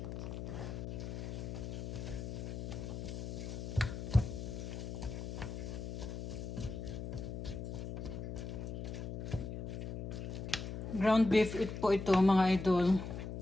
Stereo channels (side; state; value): left; noise; hum, 5 dB below the sound